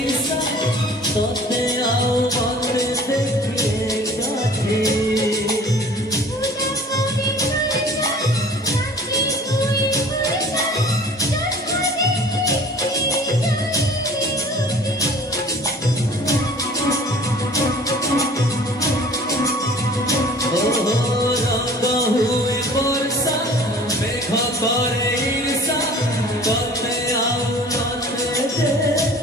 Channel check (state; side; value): normal; both; correlation 0.47